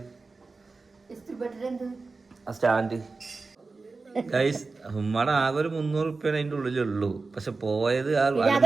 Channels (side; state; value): left; quieter; 3.9 dB